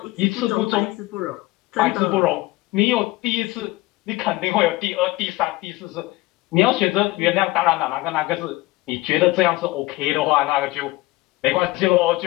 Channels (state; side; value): quieter; right; 19.5 dB